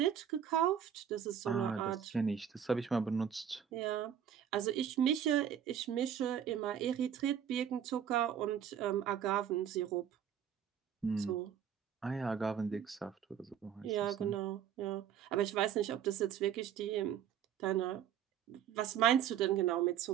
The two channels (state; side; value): quieter; left; 9.1 dB